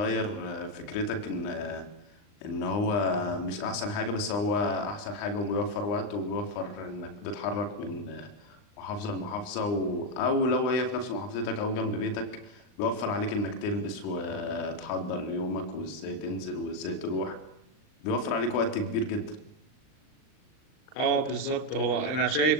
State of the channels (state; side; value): late; right; 39 ms